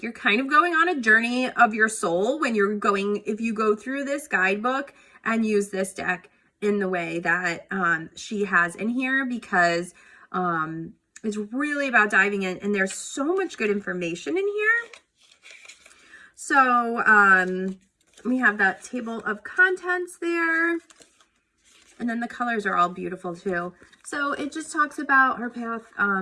you're kind of going on a journey of your soul when you're going, if you go through this guidebook and use this deck in the way that she has in here, because it's really about diving in, and there's so much good information in here. So we have that table of contents there, and then the colors are all beautiful too. So it just talks about her path,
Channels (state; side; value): identical; both; correlation 1.00